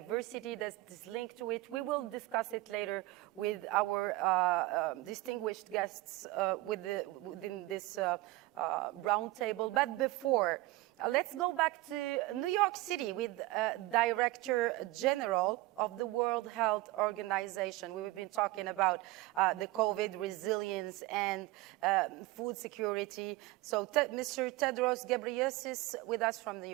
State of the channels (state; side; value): quieter; left; 19.6 dB